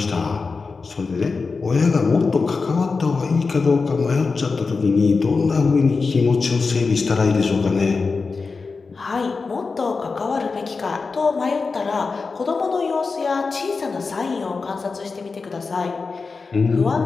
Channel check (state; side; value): quieter; right; 4.4 dB